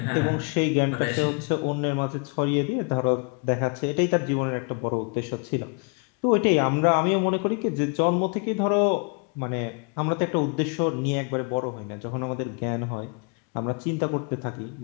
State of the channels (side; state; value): right; quieter; 35.6 dB